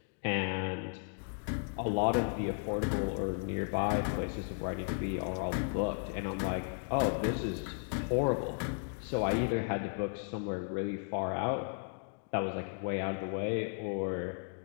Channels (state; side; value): silent; right; 55 dB below the other